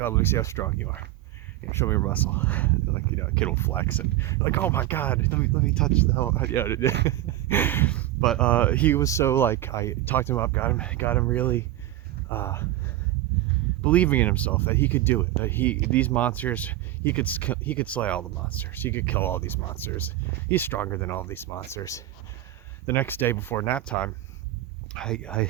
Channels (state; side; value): quieter; left; 14.6 dB